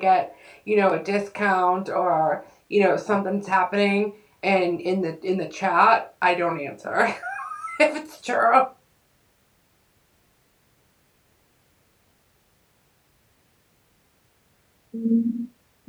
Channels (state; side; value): identical; both; correlation 1.00